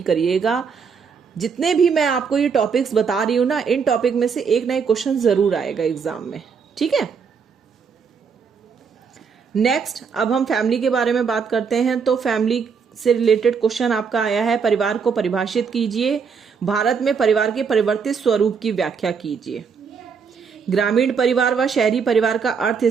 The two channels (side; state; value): left; quieter; 6.0 dB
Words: करिएगा। जितने भी मैं आपको ये टॉपिक्स बता रही हूं ना, इन टॉपिक में से एक ना एक क्वेश्चन जरूर आएगा एग्जाम में, ठीक है। नेक्स्ट अब हम फैमिली के बारे में बात करते हैं। तो फैमिली से रिलेटेड क्वेश्चन आपका आया है, परिवार को परिभाषित कीजिए, भारत में परिवार के परिवर्तित स्वरूप की व्याख्या कीजिए। ग्रामीण परिवार व शहरी परिवार का अर्थ